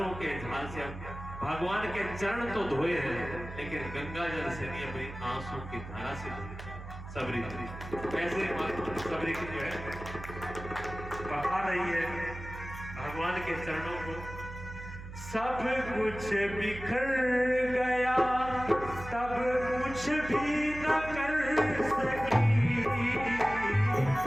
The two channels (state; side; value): noise; right; hum, 12 dB below the sound